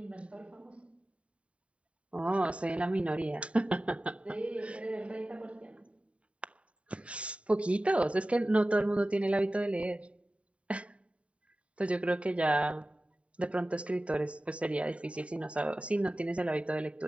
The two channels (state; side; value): late; left; 0.063 ms